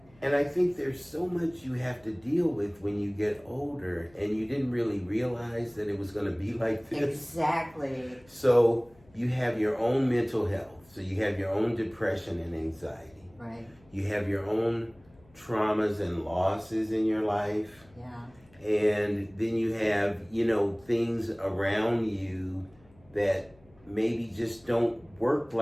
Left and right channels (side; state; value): left; noise; hum, 29 dB below the sound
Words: And I think there's so much you have to deal with when you get older, and you didn't really realize that it was going to be like this. Exactly. So you have your own mental health. So you have your own depression and anxiety. Right. You have your own traumas and losses in your life. Yeah. And then you have, you know, things around you that maybe just don't work